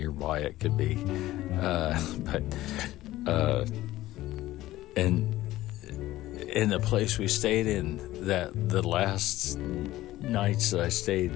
it could be. And in the place we stayed in, that the last nights that I stayed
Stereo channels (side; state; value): right; quieter; 15.9 dB